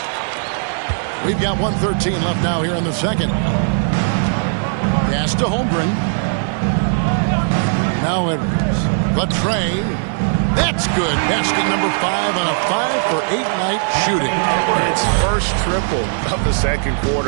We've got 1:13 left now here in the second. Pass to Holmgren. Now Edwards. The tray. That's good. Basket number 5 on a 5-for-8 night shooting. It's first triple of the second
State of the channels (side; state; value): left; silent; digital silence